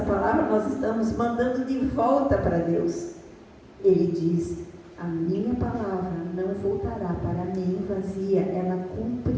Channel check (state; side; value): identical; both; correlation 1.00